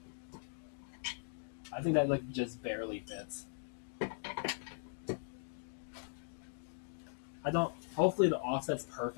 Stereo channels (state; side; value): silent; right; digital silence